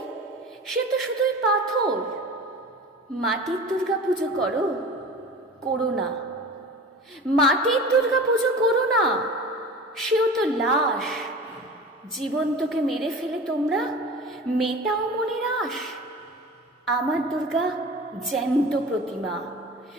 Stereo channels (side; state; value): both; normal; correlation 0.36